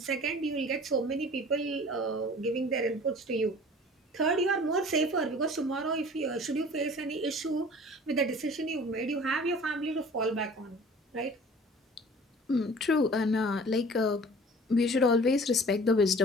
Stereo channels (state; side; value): normal; both; correlation 0.46